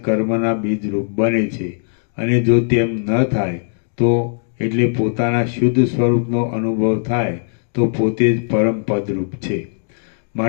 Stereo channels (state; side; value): silent; right; digital silence